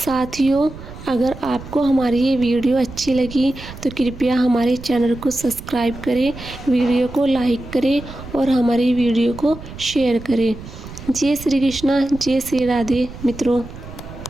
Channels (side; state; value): right; noise; rumble, 14 dB below the sound